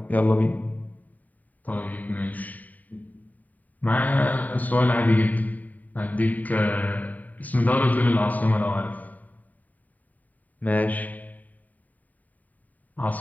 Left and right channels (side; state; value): right; late; 0.077 ms